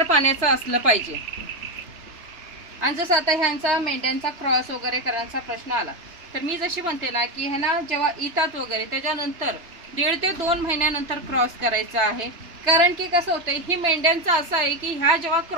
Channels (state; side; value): late; left; 3.3 ms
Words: पाण्याचं असलं पाहिजे। आणि जसं आता ह्यांचा मेंढ्यांचा क्रॉस वगैरे करण्याचा प्रश्न आला तर मी जशी म्हणते ना की ह्यांना जेव्हा येतात वगैरे त्याच्यानंतर 1.5 ते 2 महिन्यानंतर क्रॉस करायचा आहे। कारण की कसं होतंय ही मेंढ्यांचं असं आहे की ह्या जेव्हा